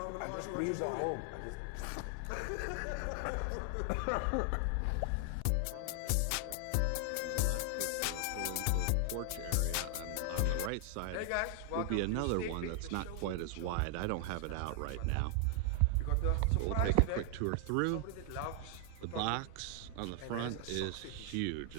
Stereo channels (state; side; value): different; both; correlation 0.00